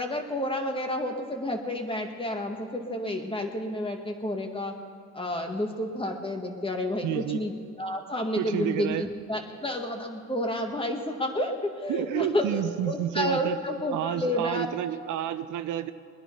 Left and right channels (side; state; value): both; normal; correlation 0.33